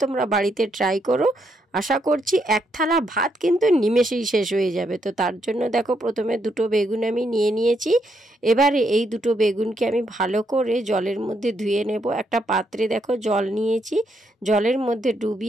তোমরা বাড়িতে ট্রাই করো। আশা করছি এক থালা ভাত কিন্তু নিমেষেই শেষ হয়ে যাবে। তো তার জন্য দেখো, প্রথমে দুটো বেগুন আমি নিয়ে নিয়েছি। এবারে এই দুটো বেগুনকে আমি ভালো করে জলের মধ্যে ধুয়ে নেব। একটা পাত্রে দেখো জল নিয়েছি, জলের মধ্যে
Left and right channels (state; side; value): normal; both; correlation 0.77